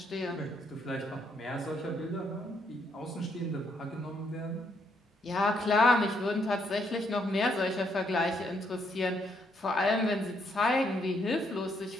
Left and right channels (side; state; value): both; normal; correlation 0.73